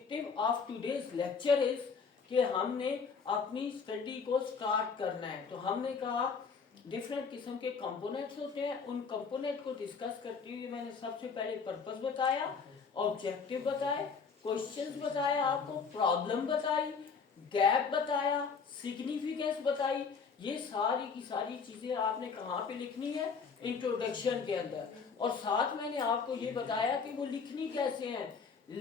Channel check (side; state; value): right; quieter; 5.5 dB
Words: of today's lecture is कि हमने अपनी स्टडी को स्टार्ट करना है, तो हमने कहा डिफरेंट किस्म के कंपोनेंट्स होते हैं, उन कंपोनेंट को डिस्कस करते हुए मैंने सबसे पहले पर्पस बताया, ऑब्जेक्टिव बताए, क्वेश्चंस बताया, आपको प्रॉब्लम बताई, गैप बताया, सिग्निफिकेंस बताई, ये सारी की सारी चीजें आपने कहाँ पे लिखनी है, इंट्रोडक्शन के अंदर। और साथ मैंने आपको ये बताया कि वो लिखनी कैसे है,